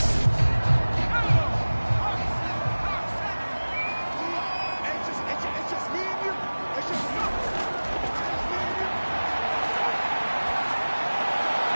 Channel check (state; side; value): inverted; both; correlation -1.00